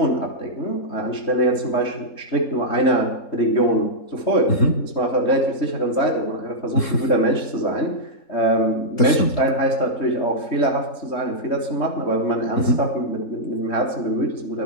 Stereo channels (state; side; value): late; right; 3.7 ms